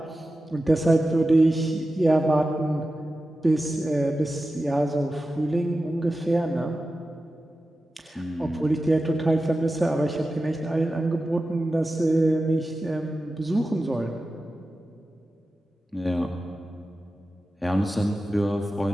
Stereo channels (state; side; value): normal; both; correlation 0.93